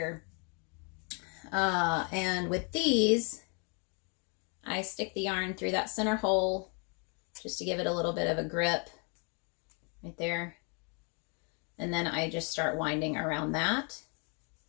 And with these, I stick the yarn through that center hole just to give it a little bit of a grip right there. And then I just start winding around that.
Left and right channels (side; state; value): right; quieter; 36.6 dB